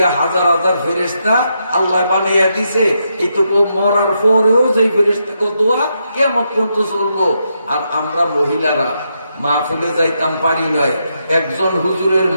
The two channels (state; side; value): inverted; both; correlation -0.81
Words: হাজার হাজার ফেরেশতা আল্লাহ বানাইয়া দিছে, এইটুকু মরার পরেও যে ফেরেশতাকে দোয়া কিয়ামত পর্যন্ত চলবো। আর আমরা মহিলারা মাহফিলে যাইতাম পারি নয়, একজন হুজুরের